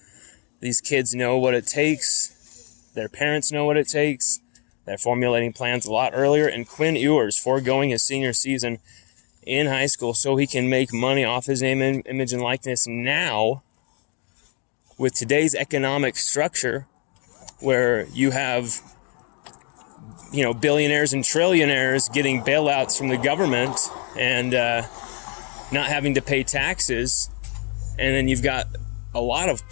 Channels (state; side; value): quieter; right; 37.0 dB